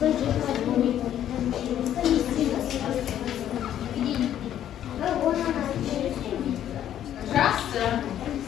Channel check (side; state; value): right; quieter; 10.9 dB